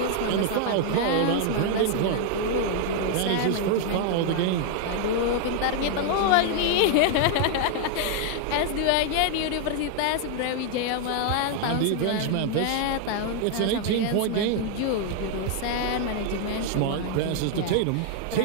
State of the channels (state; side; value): different; both; correlation 0.00